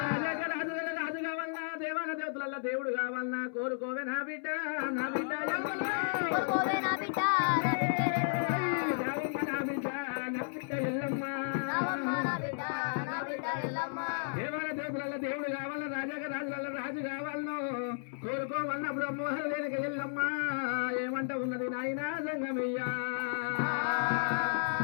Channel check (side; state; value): right; silent; 55 dB below the other